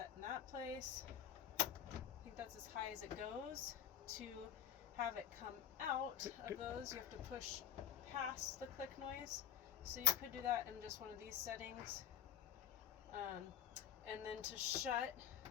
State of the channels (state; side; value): quieter; right; 9.5 dB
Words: in that place. I think that's as high as it goes. To have it come out of those, you have to push past the click noise. So you could do that in just one of these settings. And then to shut,